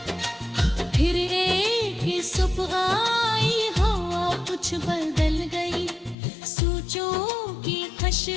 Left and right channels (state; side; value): drops out; right; at 6.2 s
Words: फिर एक सुबह आई हवा कुछ बदल गई, सोचों की